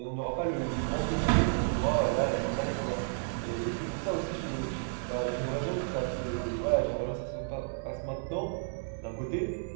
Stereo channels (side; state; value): left; silent; 57 dB below the other